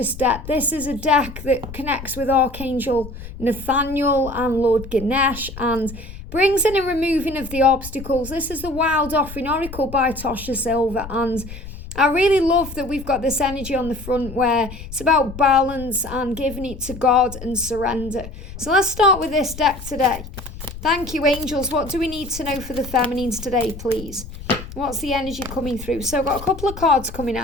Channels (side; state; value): left; noise; rumble, 13 dB below the sound